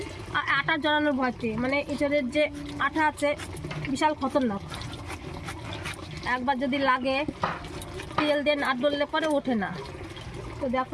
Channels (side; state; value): both; identical; correlation 1.00